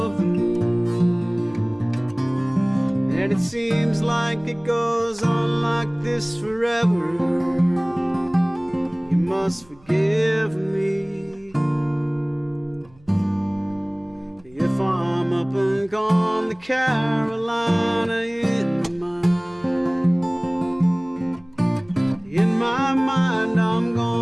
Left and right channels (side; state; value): right; noise; hum, 28 dB below the sound